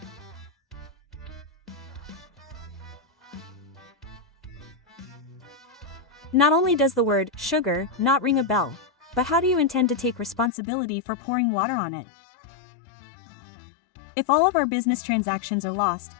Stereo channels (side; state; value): right; drops out; at 10.5 s